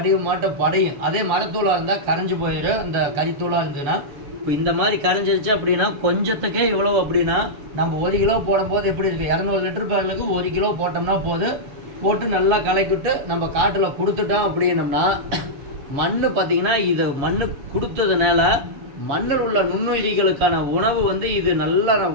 மாட்டம் படையும். அதே மரத்தூளாக இருந்தால் கரைஞ்சி போயிடும். அந்த கறித்தூளாக இருந்ததுன்னா இப்போ இந்த மாதிரி கரைஞ்சிருச்சு அப்படின்னா கொஞ்சத்துக்கே இவ்வளோ அப்படின்னா நம்ம 1 கிலோ போடும்போது எப்படி இருக்குது, 200 லிட்டர் பேரலுக்கு 1 கிலோ போட்டோம்னா போட்டு நல்லா கலக்கிவிட்டு நம்ம காட்டில் கொடுத்துட்டோம் அப்படின்னம்னா மண் பார்த்திங்கன்னா இது மண் கொடுத்ததுனால மண்ணில் உள்ள நுண்ணுயிரிகளுக்கான உணவு வந்து இது நல்ல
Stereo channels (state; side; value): late; left; 7.0 ms